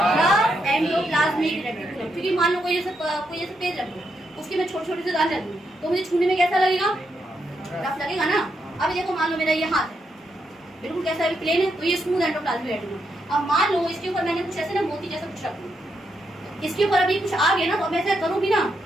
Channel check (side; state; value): both; normal; correlation 0.81